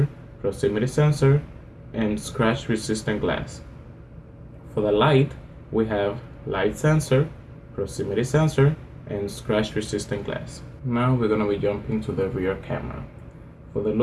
proximity sensor, and scratch-resistant glass. For the Lite, we have light sensor, proximity sensor, and scratch-resistant glass. Now we're going to be jumping to the rear camera. For the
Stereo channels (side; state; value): both; identical; correlation 1.00